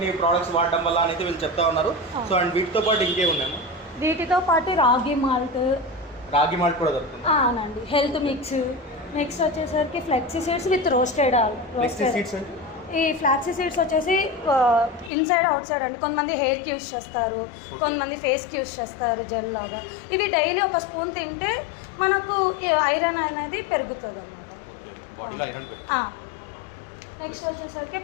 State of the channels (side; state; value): right; drops out; at 15.1 s